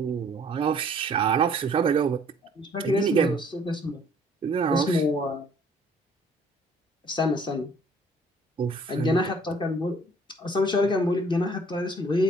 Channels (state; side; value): normal; both; correlation 0.58